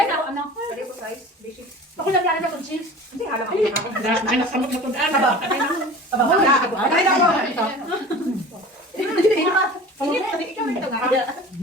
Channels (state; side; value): normal; both; correlation 0.39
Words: Ako lang lang ng cheese. Hindi alam ako. Ay, nasamot na tudaan.